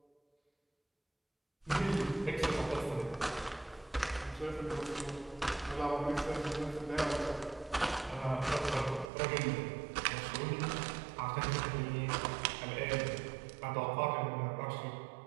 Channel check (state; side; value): drops out; left; at 9.1 s